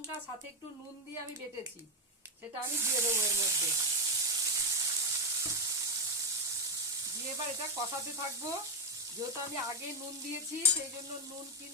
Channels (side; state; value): both; normal; correlation 0.06